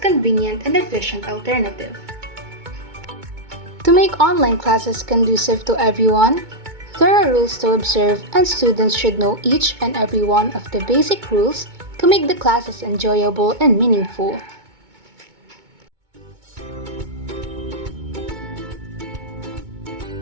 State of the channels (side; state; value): left; late; 2.2 ms